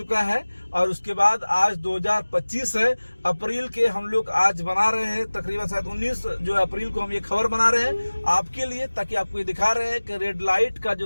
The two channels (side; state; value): both; inverted; correlation -1.00